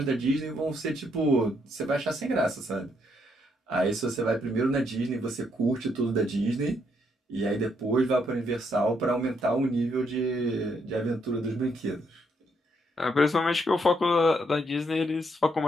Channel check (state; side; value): normal; both; correlation 0.74